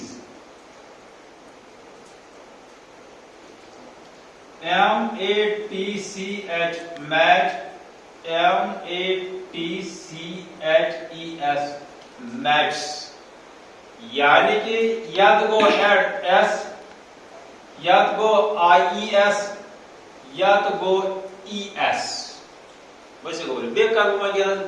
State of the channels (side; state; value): both; identical; correlation 1.00